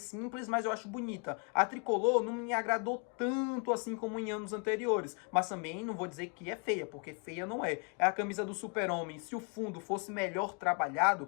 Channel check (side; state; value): right; quieter; 37.0 dB